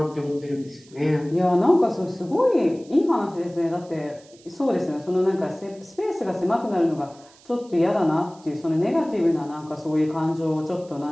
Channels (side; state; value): right; noise; hiss, 26 dB below the sound